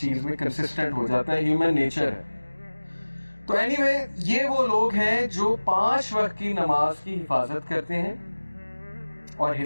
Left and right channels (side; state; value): both; inverted; correlation -1.00